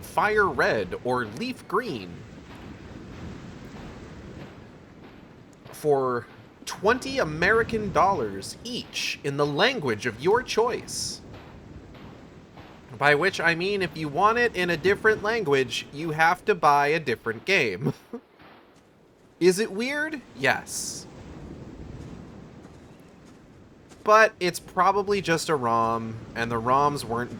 Fire Red or Leaf Green for 20 American dollars each in the language of your choice. By which I mean if you want it in a different language, you have to buy a different game. Is it weird? Yes. But it's probably just a ROM, and the ROMs weren't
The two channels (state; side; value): identical; both; correlation 1.00